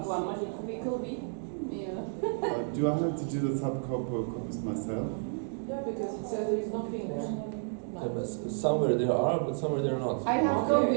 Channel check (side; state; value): left; silent; 57 dB below the other